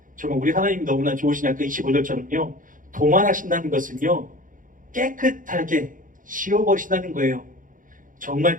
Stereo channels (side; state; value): left; late; 0.39 ms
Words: 정말 우리 하나님이 너무나 좋으시냐 그 25절처럼요 도만하신다는 것은요 깨끗하게 지워버리신다는 거예요. 정말